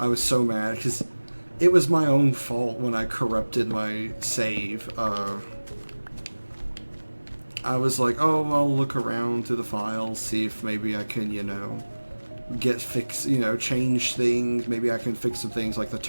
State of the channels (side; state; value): both; inverted; correlation -1.00